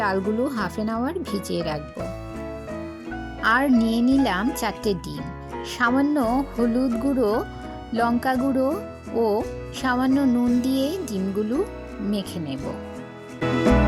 হাফ অ্যান আওয়ার ভিজিয়ে রাখবো। আর নিয়ে নিলাম 4টে ডিম। সামান্য হলুদ গুঁড়ো, লঙ্কা গুঁড়ো ও সামান্য নুন দিয়ে ডিমগুলো মেখে নেব।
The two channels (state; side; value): identical; both; correlation 1.00